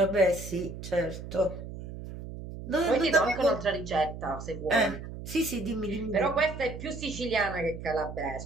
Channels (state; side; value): noise; right; hum, 10 dB below the sound